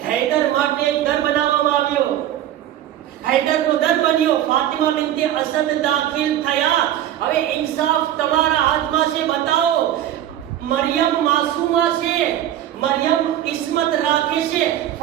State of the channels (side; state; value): left; quieter; 11.9 dB